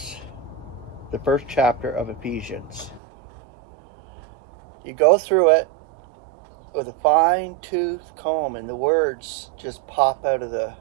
The first chapter of Ephesians. You go through it with a fine-tooth comb, and the words just pop out of the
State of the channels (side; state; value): left; drops out; at 3.0 s